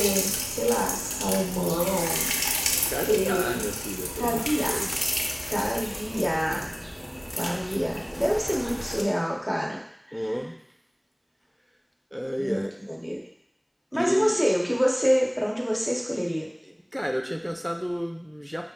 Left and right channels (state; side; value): identical; both; correlation 1.00